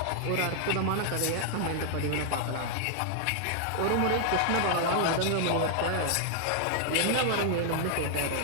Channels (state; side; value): different; both; correlation 0.00